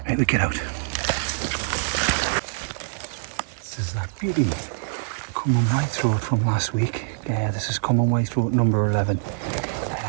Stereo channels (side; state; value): left; silent; digital silence